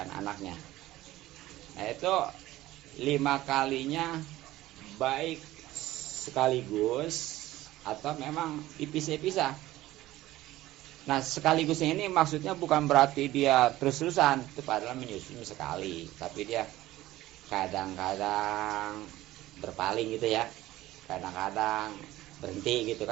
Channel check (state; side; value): quieter; left; 16.1 dB